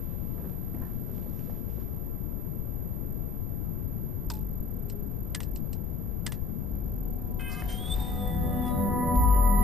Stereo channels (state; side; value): noise; left; rumble, 1 dB below the sound